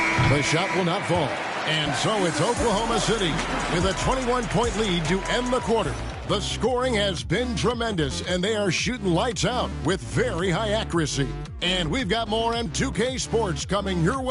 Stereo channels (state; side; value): identical; both; correlation 1.00